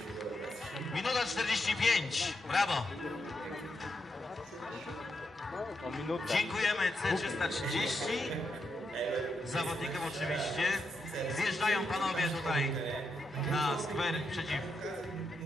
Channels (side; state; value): both; normal; correlation 0.83